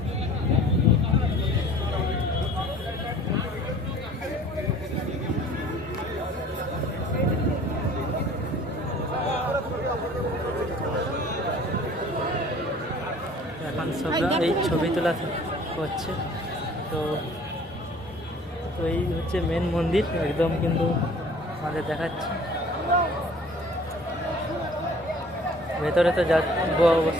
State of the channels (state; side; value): normal; both; correlation 0.50